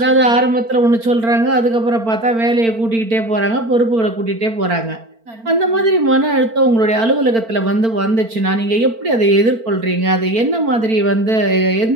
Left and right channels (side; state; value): left; late; 4.4 ms